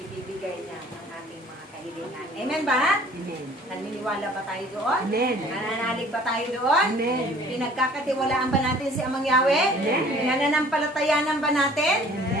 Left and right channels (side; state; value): both; normal; correlation 0.52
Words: niya ng ating mga kahilingan. Amen ba? Amen. Naniniwala ba tayo doon? Amen. Nananalig ba tayo doon? Amen. Pinagkakatiwalaan ba natin si Amang Yahweh? Amen. Pinananampalatayanan ba natin?